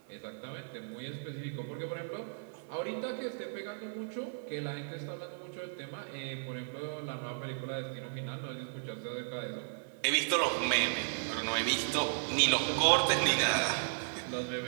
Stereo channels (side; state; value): left; silent; 54 dB below the other